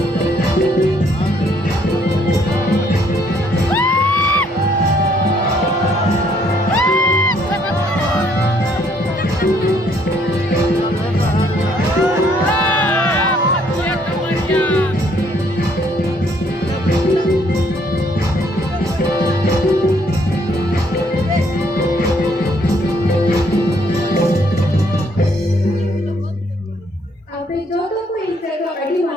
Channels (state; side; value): normal; both; correlation 0.67